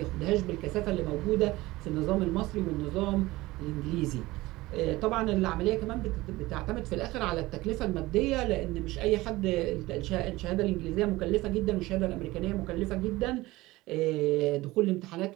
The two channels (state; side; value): quieter; left; 19.3 dB